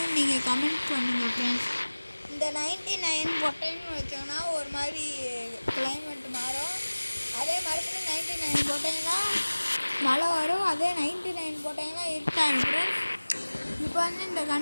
நீங்கள் கமெண்ட் பண்ணுங்கள் ஃப்ரெண்ட்ஸ். இந்த 99 போட்டேன்னு வச்சோங்கன்னா ஒரு மாதிரி கிளைமேட் மாறும். அதே மறுபடியும் 99 போட்டிங்கன்னா மழை வரும். அதே 99 போட்டிங்கன்னா இருட்டாகும் ஃப்ரெண்ட்ஸ். இப்போ இந்த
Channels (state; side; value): inverted; both; correlation -1.00